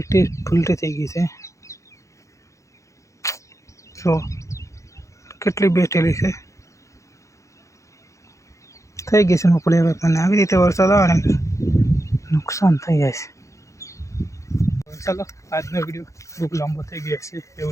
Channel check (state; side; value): late; right; 0.15 ms